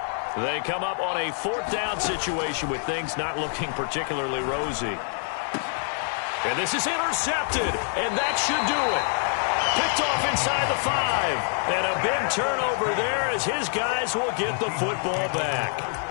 They come up on a 4th down situation with things not looking particularly rosy. And this is intercepted, and that should do it. Picked off inside the 5. And a big turnover there as his guys will get the football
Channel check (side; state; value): right; silent; 56 dB below the other